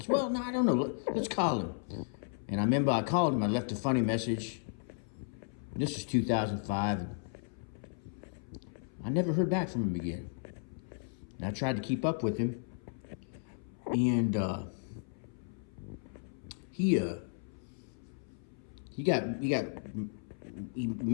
well, no, I don't know. Let's call him. And I remember I called him. I left a funny message. This was 2005. And I never heard back from him again. And I tried to keep up with him. And he got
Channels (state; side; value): silent; right; 55 dB below the other